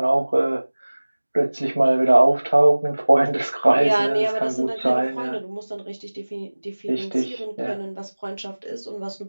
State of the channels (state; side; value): inverted; both; correlation -1.00